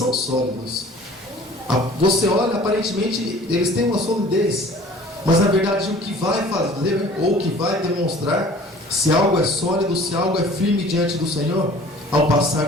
sólidos. Você olha, aparentemente eles têm uma solidez, mas na verdade o que vai fazer, ou o que vai demonstrar se algo é sólido, se algo é firme diante do Senhor, ao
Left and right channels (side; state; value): both; normal; correlation 0.48